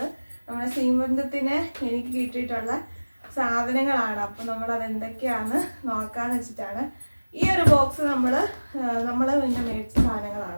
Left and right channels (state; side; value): inverted; both; correlation -1.00